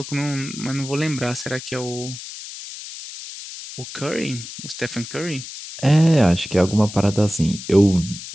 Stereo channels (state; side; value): noise; left; hiss, 12 dB below the sound